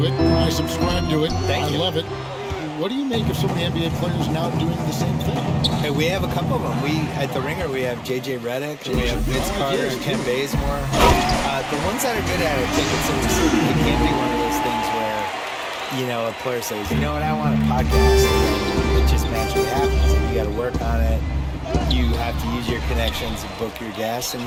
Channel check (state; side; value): identical; both; correlation 1.00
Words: it. I subscribe to it. Thank you. I love it. What do you make of some of the NBA players now doing the same thing? Hey, we have a couple of them. At the Ringer, we have J.J. Redick, and we have Vince Carter and Ken Bazemore. The ones that are good at it, it can't be one of those things where, you know, a player says, you know what, I want a podcast. And it just magically happens. And you got to work on it. You have to use your connections and book your guests, and